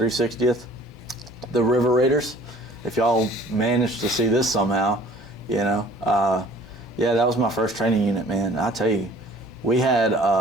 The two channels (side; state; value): both; normal; correlation 0.52